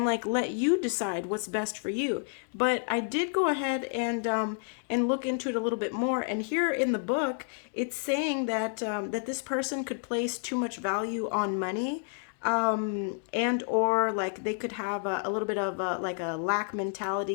like let you decide what's best for you. But I did go ahead and look into it a little bit more. And here in the book, it's saying that that this person could place too much value on money, and or like they could have a little bit of like a lack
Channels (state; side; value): silent; right; 58 dB below the other